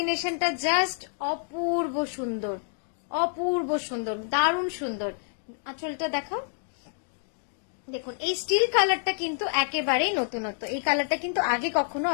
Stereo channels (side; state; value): right; silent; digital silence